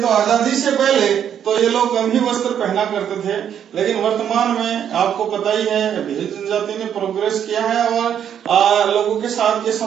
तो आजादी से पहले तो ये लोग कम ही वस्त्र पहना करते थे, लेकिन वर्तमान में आपको पता ही है भील जनजाति ने प्रोग्रेस किया है और लोगों के साथ के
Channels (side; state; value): left; quieter; 9.1 dB